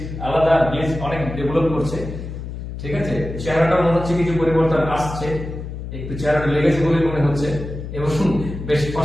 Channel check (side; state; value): left; noise; hum, 8 dB below the sound